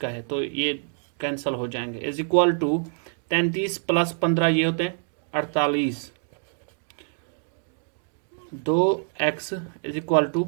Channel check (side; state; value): left; silent; 56 dB below the other